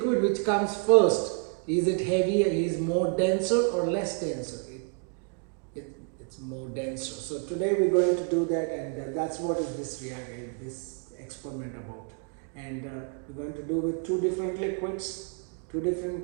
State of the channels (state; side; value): quieter; left; 39.9 dB